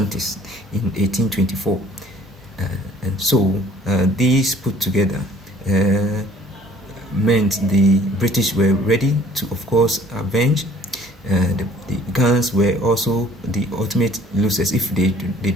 in 1824. And so these put together meant the British were ready to, of course, avenge. The Gans were also the ultimate losers if they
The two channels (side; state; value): both; normal; correlation 0.55